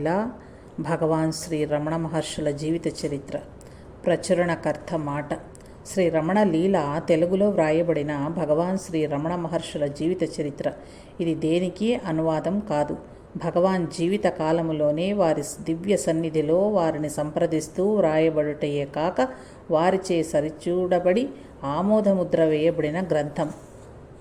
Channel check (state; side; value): identical; both; correlation 1.00